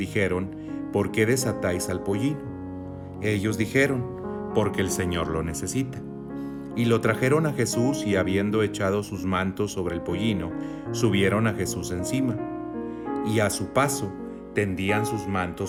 ¿por qué desatáis al pollino? Ellos dijeron: porque el Señor lo necesita. Y lo trajeron a Jesús, y habiendo echado sus mantos sobre el pollino, subieron a Jesús encima. Y a su paso tendían sus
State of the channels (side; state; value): both; identical; correlation 1.00